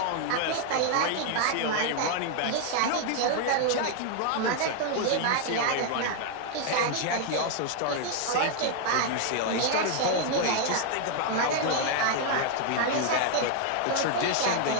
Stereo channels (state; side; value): different; both; correlation 0.00